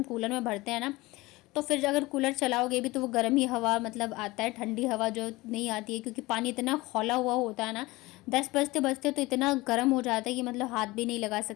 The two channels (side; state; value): right; quieter; 21.0 dB